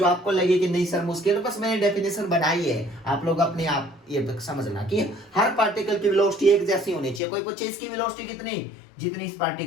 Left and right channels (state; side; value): drops out; right; at 7.2 s